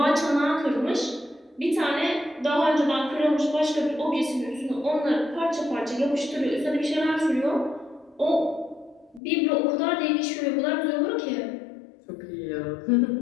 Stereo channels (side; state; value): right; drops out; at 9.2 s